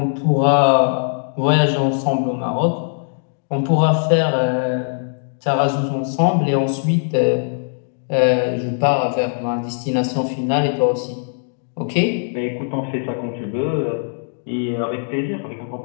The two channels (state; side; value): silent; right; digital silence